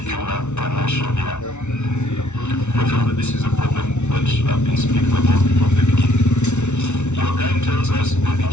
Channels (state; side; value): late; right; 0.82 ms